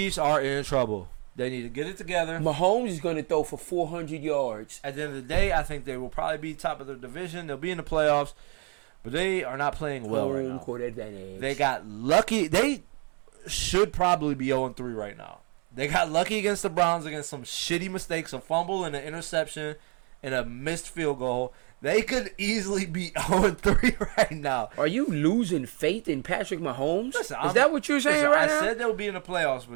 are in trouble. They need to get it together. Mahomes is going to throw for 400 yards. At the end of the day, I think they will probably be top of their division. They'll be in the playoffs, but they are not playing well right now. Court advantage. They got lucky. They should probably be 0-3 right now. They got lucky against the Browns against some shitty mistakes, a fumble and an interception and a missed field goal. They could easily be 0-3 right now. Are you losing faith in Patrick Mahomes? Listen, is that what you're saying listen, right I now? said they'll be in the playoffs,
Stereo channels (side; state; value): left; quieter; 36.0 dB